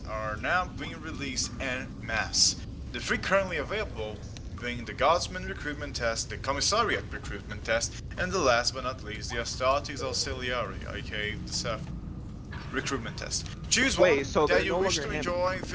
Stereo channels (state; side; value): identical; both; correlation 1.00